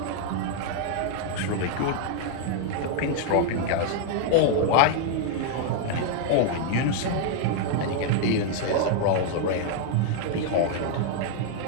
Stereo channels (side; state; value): both; different; correlation 0.00